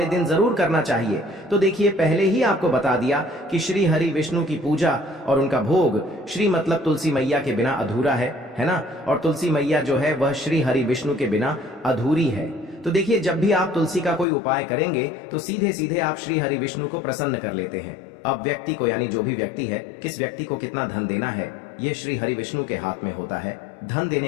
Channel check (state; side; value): drops out; right; at 14.2 s